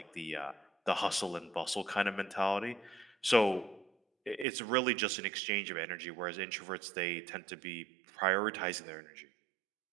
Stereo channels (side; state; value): left; drops out; at 4.5 s